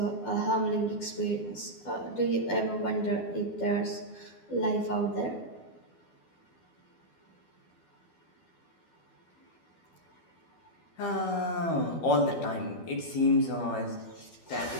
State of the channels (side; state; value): right; late; 12 ms